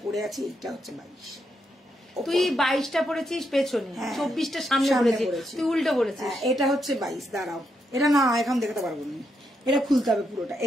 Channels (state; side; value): normal; both; correlation 0.81